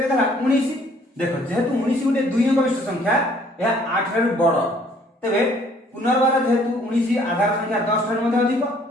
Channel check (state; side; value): normal; both; correlation 0.60